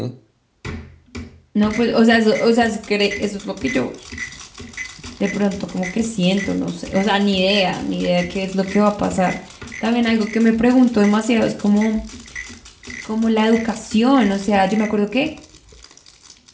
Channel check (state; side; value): identical; both; correlation 1.00